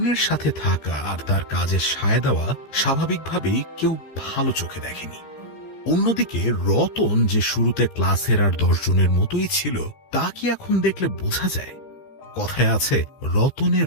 সাথে থাকা আর তার কাজে সায় দেওয়া স্বাভাবিকভাবেই কেউ ভালো চোখে দেখেনি। অন্যদিকে রতন, যে শুরুতে ক্লাসের আর 10 জনের মতোই ছিল, তাকে এখন দেখলে বোঝা যায়, কথায় আছে রতনে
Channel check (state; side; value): late; right; 15 ms